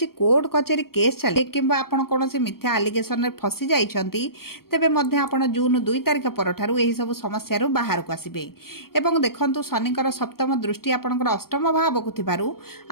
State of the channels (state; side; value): late; right; 0.94 ms